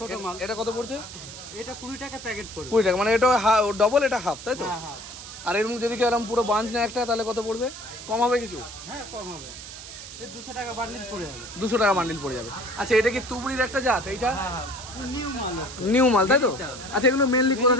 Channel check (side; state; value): right; noise; hiss, 13 dB below the sound